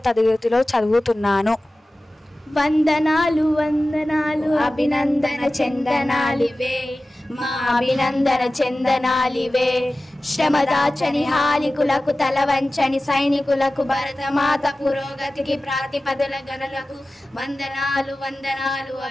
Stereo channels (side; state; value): both; normal; correlation 0.96